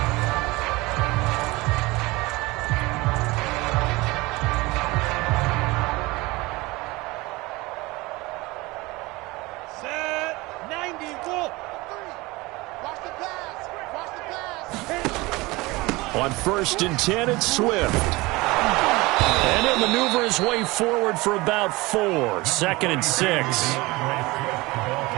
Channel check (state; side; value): quieter; left; 22.2 dB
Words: Set 90, Wolf. Watch the pass. On 1st and 10, it's Swift. And he'll maneuver his way forward for about 4. 2nd and 6. He's